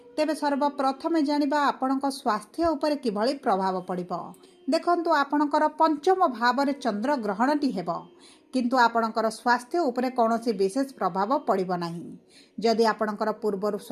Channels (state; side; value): identical; both; correlation 1.00